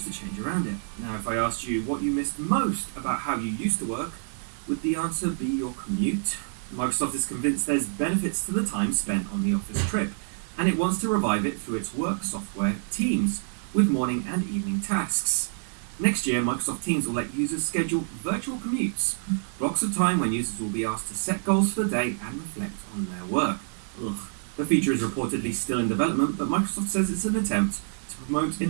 to change around it. Now, if I asked you what you missed most about how you used to work, would the answer be your commute? Microsoft is convinced there's benefits to the time spent on the office trip, and it wants to revive it through its work software, Teams, with morning and evening tasks. Next year, Microsoft Teams will let users schedule virtual commutes, blocks of time when users will be asked to set goals for the day and reflect on their work. The feature is reportedly still in development, but Microsoft says it's an attempt to promote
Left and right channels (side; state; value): left; silent; digital silence